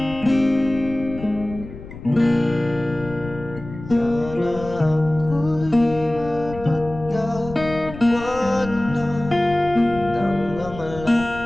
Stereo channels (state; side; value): noise; left; rumble, 14 dB below the sound